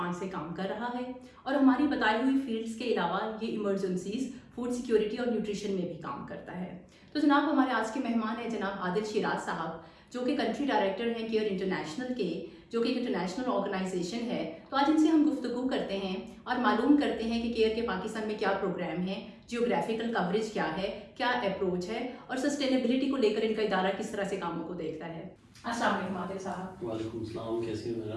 से काम कर रहा है। और हमारी बताई हुई फील्ड्स के अलावा ये इमरजेंसीज, फूड सिक्योरिटी और न्यूट्रिशन में भी काम करता है। तो जनाब, हमारे आज के मेहमान हैं जनाब आदिल शिराज साहब, जो कि कंट्री डायरेक्टर हैं केयर इंटरनेशनल के, जो कि एक इंटरनेशनल ऑर्गेनाइजेशन है। तो आज इनसे हम गुफ्तगू करते हैं और मालूम करते हैं कि केयर के पाकिस्तान में क्या प्रोग्राम है, जियोग्राफिकल कवरेज क्या है, क्या अप्रोच है और सस्टेनेबिलिटी को लेकर इनका इदारा किस तरह से कामों को देखता है। अस्सलाम वालेकुम आदिल साहब। वालेकुम सलाम, कैसी हो मेरा?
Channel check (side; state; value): both; identical; correlation 1.00